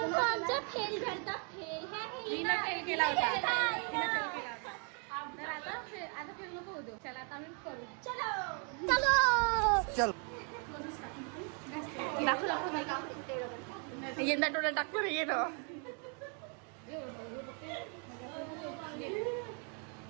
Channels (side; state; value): left; quieter; 39.4 dB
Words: आमचा फेल झालता फेल फेल केला होता. तर आता फेल नको होतो. चला आता आम्ही करू. चलो चल यंदा टोला टाकतो रे येणं.